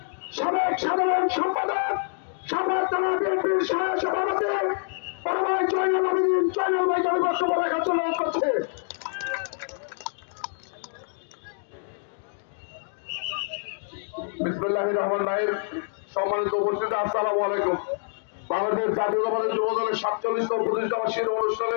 সাবেক সাধারণ সম্পাদক, সাভার থানা বিএনপির সভাপতি বড় ভাই জয়নাল আবেদিন জয়নাল ভাইকে আমি বক্তব্য রাখার জন্য অনুরোধ করছি। বিসমিল্লাহির রহমানির রহিম। সম্মানিত উপস্থিতি, আসসালামু আলাইকুম। বাংলাদেশ জাতীয়তাবাদী যুব দলের 47তম প্রতিষ্ঠা বার্ষিকী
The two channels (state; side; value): silent; right; digital silence